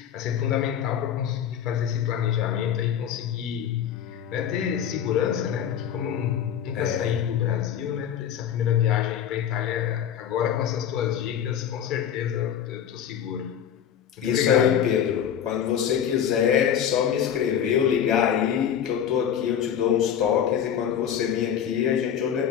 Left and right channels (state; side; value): quieter; right; 9.1 dB